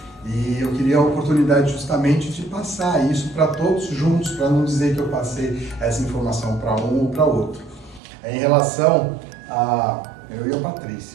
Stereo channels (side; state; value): left; drops out; at 8.0 s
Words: E eu queria a oportunidade justamente de passar isso para todos juntos, para não dizer que eu passei essa informação para um ou para outro. Em relação a eu e a